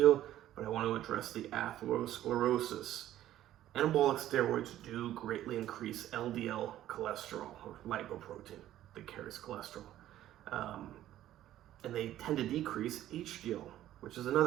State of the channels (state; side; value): quieter; left; 13.0 dB